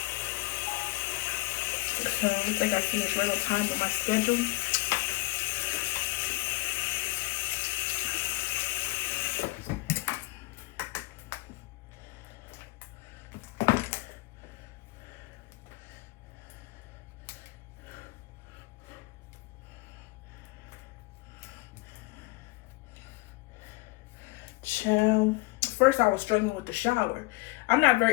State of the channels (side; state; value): right; quieter; 22.6 dB